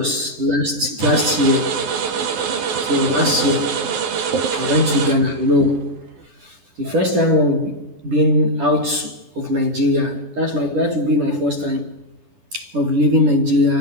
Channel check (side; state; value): left; late; 10 ms